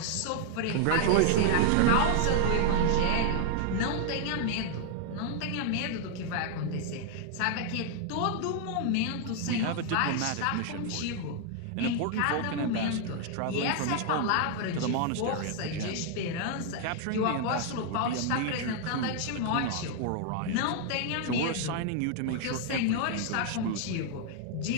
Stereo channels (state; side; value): different; both; correlation 0.00